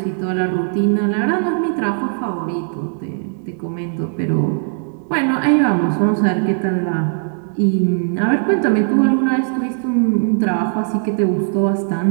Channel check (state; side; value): silent; left; 67 dB below the other